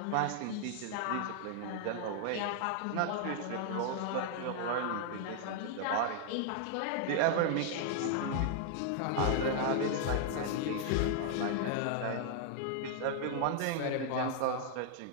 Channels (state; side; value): different; both; correlation 0.00